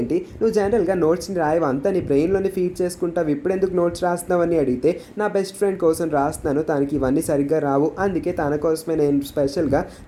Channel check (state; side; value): identical; both; correlation 1.00